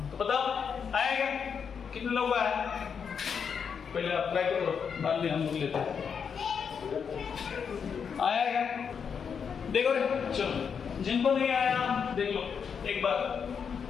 तो बताओ आया क्या, कितने लोग आए, पहले आप ट्राई करो, बाद में हम लोग लेते हैं, आया क्या, देखो रे, चलो जिनको नहीं आया देख लो एक बार,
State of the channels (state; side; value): quieter; right; 6.7 dB